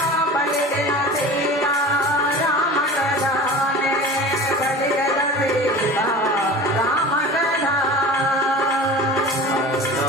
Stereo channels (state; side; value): normal; both; correlation 0.37